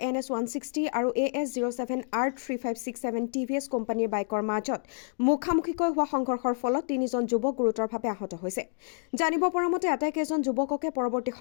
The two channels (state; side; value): silent; right; digital silence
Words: NS160 আৰু AS07R3567 TVS কোম্পানীৰ বাইকৰ মাজত মুখামুখিকৈ হোৱা সংঘৰ্ষৰ ফলত 3জন যুৱক গুৰুতৰভাৱে আহত হৈছে। জানিব পৰা মতে আটাইকেইজন যুৱককে পৰৱৰ্তী